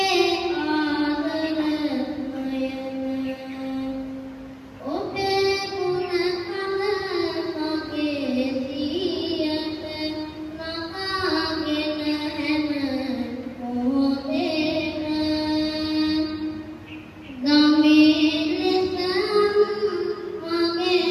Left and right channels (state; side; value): identical; both; correlation 1.00